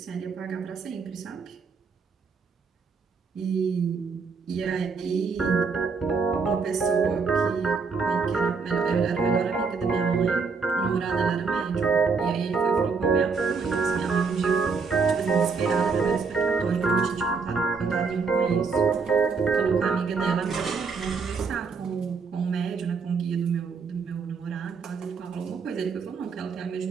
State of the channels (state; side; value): quieter; left; 5.0 dB